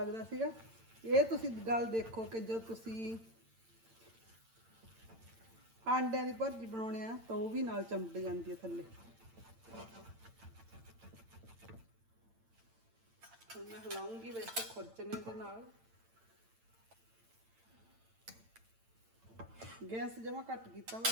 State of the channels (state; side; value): late; left; 8.9 ms